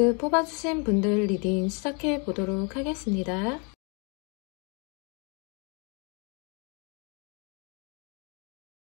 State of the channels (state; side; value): quieter; right; 34.4 dB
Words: 뽑아주신 분들 리딩 시작해 보도록 하겠습니다.